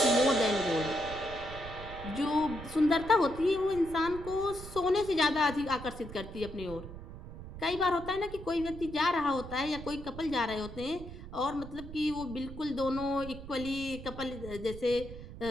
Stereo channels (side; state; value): right; noise; rumble, 12 dB below the sound